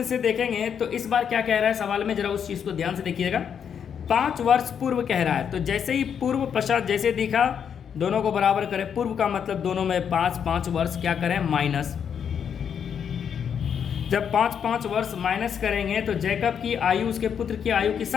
से देखेंगे तो इस बार क्या कह रहा है सवाल में, जरा उस चीज़ को ध्यान से देखिएगा। 5 वर्ष पूर्व कह रहा है, तो जैसे ही पूर्व पश्चात जैसे दिखा, दोनों को बराबर करें। पूर्व का मतलब दोनों में 5 वर्ष क्या करें, माइनस। जब 5 वर्ष माइनस करेंगे तो जैकब की आयु उसके पुत्र की आयु की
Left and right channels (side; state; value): right; quieter; 7.8 dB